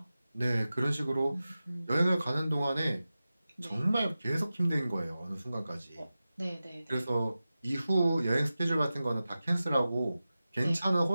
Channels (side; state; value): both; inverted; correlation -0.94